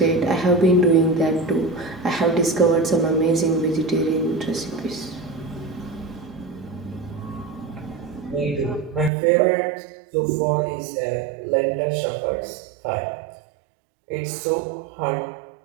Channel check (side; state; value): left; drops out; at 9.1 s